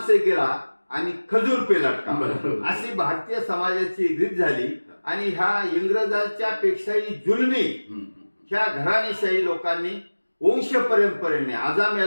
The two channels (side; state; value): both; inverted; correlation -1.00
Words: से गिरा आणि खजूर पे लटका, अशी भारतीय समाजाची रीत झाली. आणि ह्या इंग्रजांच्या पेक्षाही जुलमी ह्या घराणेशाही लोकांनी वंश परंपरेने,